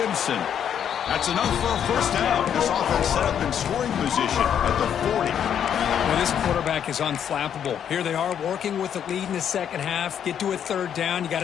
That's enough for a first down. This offense set up in scoring position at the 40. Well, this quarterback is unflappable. Here they are working with the lead in the second half. Get to a third down. You got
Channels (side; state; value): right; quieter; 8.9 dB